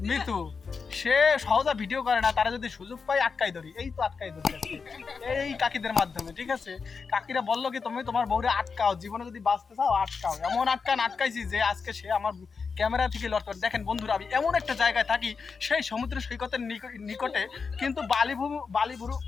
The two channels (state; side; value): quieter; right; 5.2 dB